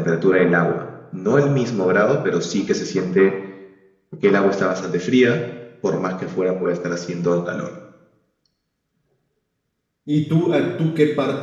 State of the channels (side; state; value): both; identical; correlation 1.00